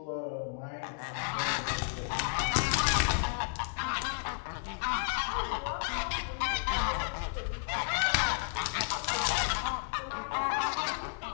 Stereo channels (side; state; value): right; silent; digital silence